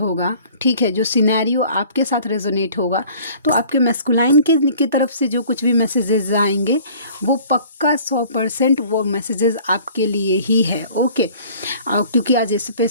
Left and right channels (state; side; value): inverted; both; correlation -0.50